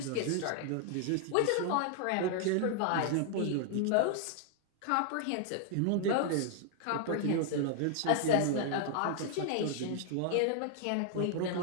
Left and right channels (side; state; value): both; different; correlation 0.00